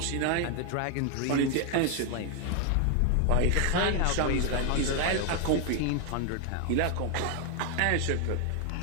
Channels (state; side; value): different; both; correlation 0.00